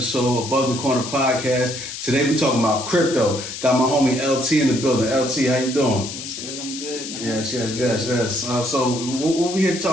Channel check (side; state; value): left; noise; hiss, 8 dB below the sound